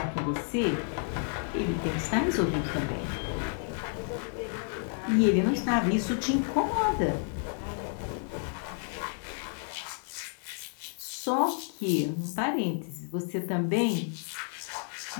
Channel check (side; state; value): right; silent; 57 dB below the other